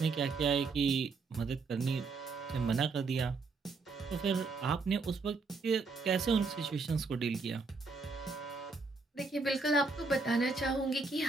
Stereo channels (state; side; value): quieter; left; 4.1 dB